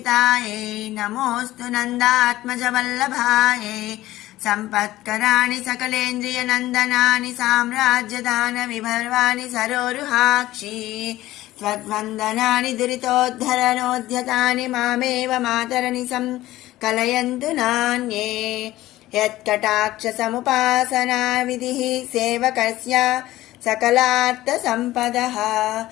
నమోస్తు నందాత్మజ వల్లభాయై సంపత్కరాణి సకలేంద్రియ నందనాని సామ్రాజ్యదాన విభర్వాణి సరోరుహాక్షి త్వద్వందనాని దురితోద్ధరణోద్యతాని మామేవ మాతరని కలయంతు నాన్యే యత్కటాక్ష సముపాసనా విధిః సేవకస్య సకలార్థ సంపదః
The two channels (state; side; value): quieter; right; 16.0 dB